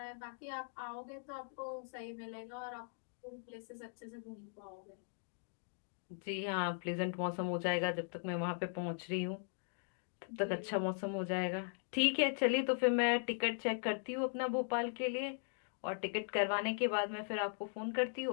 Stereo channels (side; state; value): right; silent; digital silence